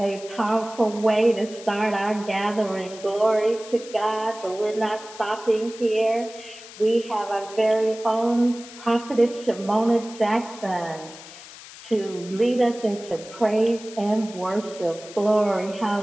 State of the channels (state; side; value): noise; left; hiss, 17 dB below the sound